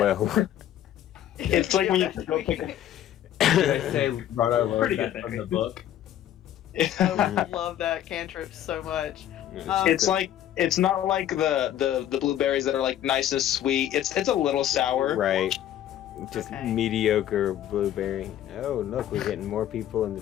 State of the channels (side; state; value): right; quieter; 11.6 dB